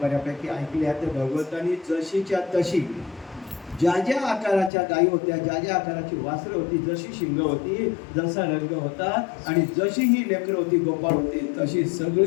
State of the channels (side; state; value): right; drops out; at 4.7 s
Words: बऱ्यापैकी ऐकल्या. तर भगवंतांनी जशीच्या तशी ज्या ज्या आकाराच्या गायी होत्या, ज्या ज्या आकाराची वासरं होती, जशी शिंग होती, जसा रंग होता आणि जशी ही लेकरं होती, गोपाळ होते, तशी